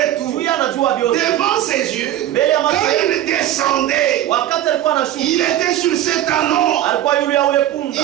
tout. Juu yeye anajua vyote. Devant ses yeux, Mbele ya macho quand yake, il descendait, wakati alikuwa anashuka, il était sur cet anneau. alikuwa yule ya ule punda.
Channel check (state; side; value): quieter; left; 12.6 dB